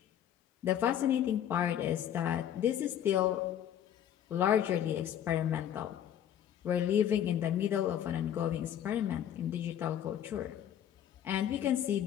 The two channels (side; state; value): right; quieter; 10.3 dB